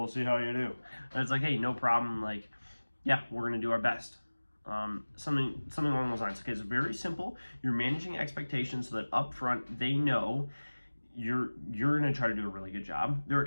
see how you do. And it's like, hey, no problem, yeah, we're gonna do our best. Something along those lines. Okay, it's very simple. You're managing expectations so that up front they know you're going to try to do a really good job. They're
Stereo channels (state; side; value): inverted; both; correlation -1.00